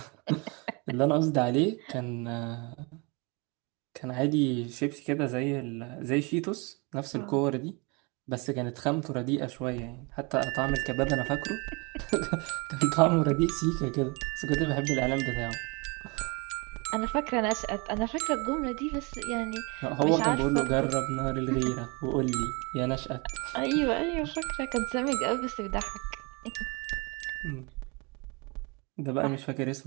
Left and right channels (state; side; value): quieter; left; 29.7 dB